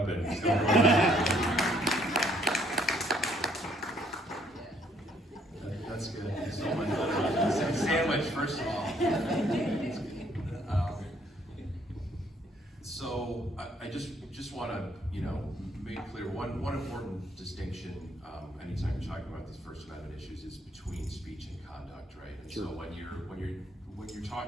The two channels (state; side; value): normal; both; correlation 0.66